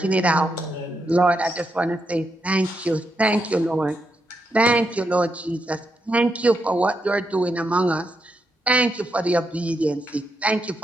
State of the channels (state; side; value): normal; both; correlation 0.83